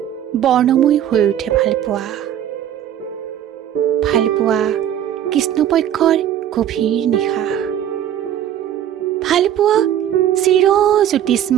বৰ্ণময় হৈ উঠে ভালপোৱা ভালপোৱা কৃষ্ণপক্ষৰ গভীৰ নিশা ভালপোৱা চিৰ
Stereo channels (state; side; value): quieter; left; 10.7 dB